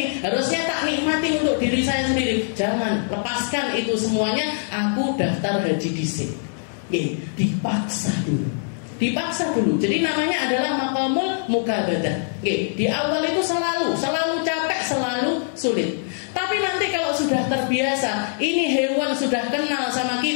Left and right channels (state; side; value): silent; right; digital silence